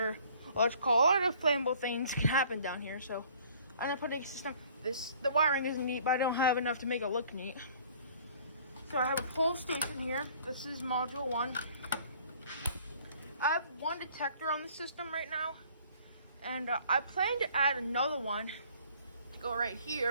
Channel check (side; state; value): both; inverted; correlation -0.55